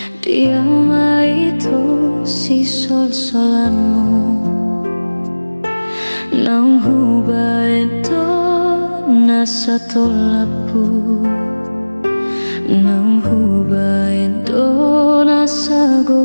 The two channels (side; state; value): both; inverted; correlation -1.00